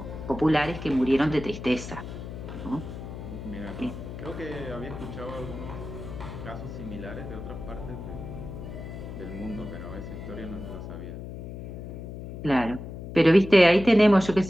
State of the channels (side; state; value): left; noise; hum, 9 dB below the sound